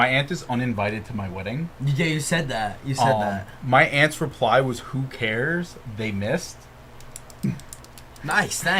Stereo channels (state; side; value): identical; both; correlation 1.00